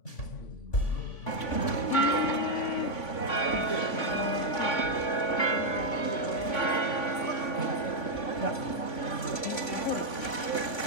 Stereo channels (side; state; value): right; late; 3.5 ms